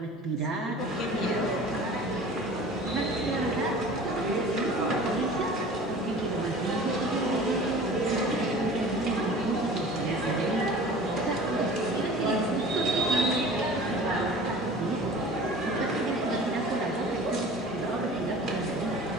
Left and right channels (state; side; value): normal; both; correlation 0.42